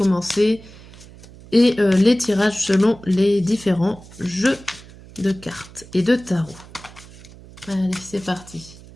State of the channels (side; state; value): right; noise; hum, 20 dB below the sound